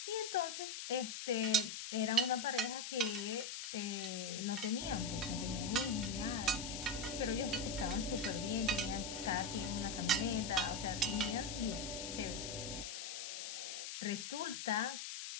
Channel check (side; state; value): left; noise; hiss, 6 dB below the sound